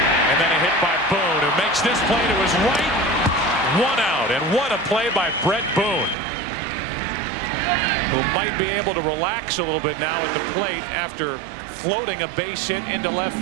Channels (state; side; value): drops out; left; at 6.2 s